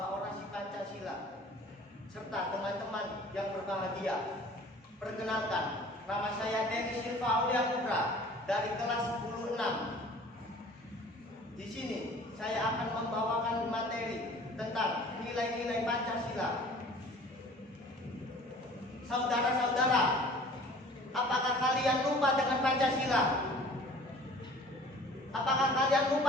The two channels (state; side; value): normal; both; correlation 0.47